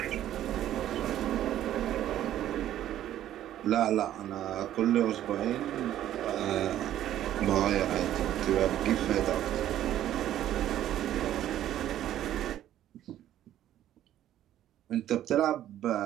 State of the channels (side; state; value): left; quieter; 12.1 dB